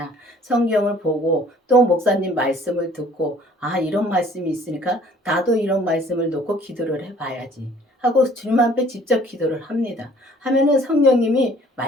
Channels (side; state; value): both; normal; correlation 0.56